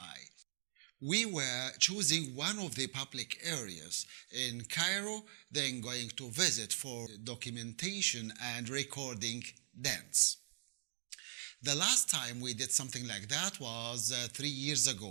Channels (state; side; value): silent; left; digital silence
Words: We were choosing one of the public areas in Cairo, then going to visit for documentation and recording dance. The last time we did something like that was 3 years